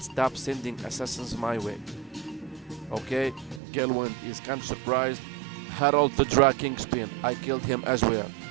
stop sending assassins my way. Okay, Galewind is kind of surprised. Harold the Dra Kingspin, I killed him as well.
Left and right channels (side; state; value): left; drops out; at 3.6 s